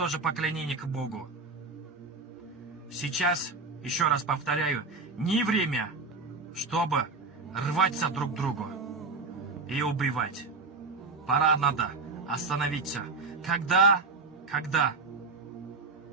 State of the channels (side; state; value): left; quieter; 4.0 dB